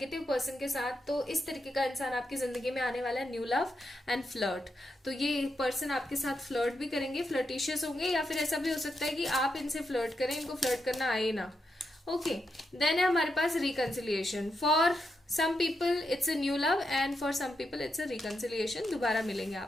पर्सन के साथ, तो इस तरीके का इंसान आपकी जिंदगी में आने वाला है, न्यू लव एंड फ्लर्ट। तो ये पर्सन आपके साथ फ्लर्ट भी करेंगे, फ्लर्टिशियस होंगे, या फिर ऐसा भी हो सकता है कि आप इनसे फ्लर्ट करें, इनको फ्लर्ट करना आए ना। ओके, देन है हमारे पास reconciliation. For some people it's a new love and for some people it's a reconciliation. दोबारा मिलेंगे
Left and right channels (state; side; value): normal; both; correlation 0.84